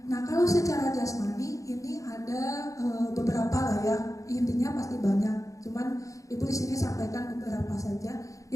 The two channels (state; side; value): late; right; 0.16 ms